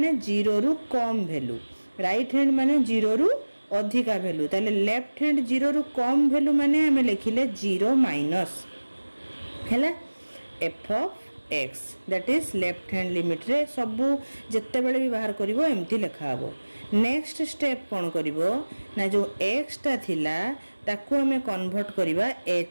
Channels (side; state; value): both; inverted; correlation -1.00